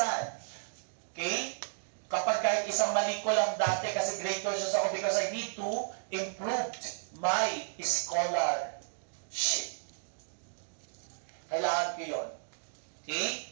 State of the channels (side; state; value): left; silent; digital silence